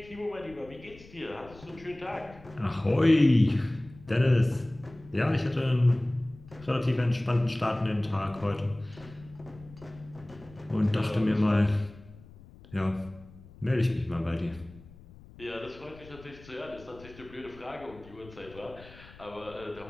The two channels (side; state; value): left; noise; rumble, 21 dB below the sound